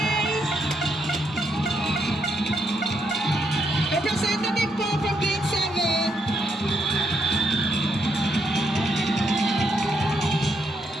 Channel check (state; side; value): normal; both; correlation 0.77